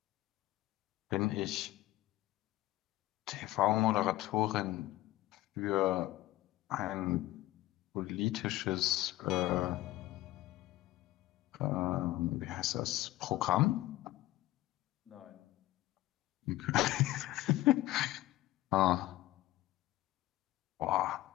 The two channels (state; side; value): quieter; right; 16.5 dB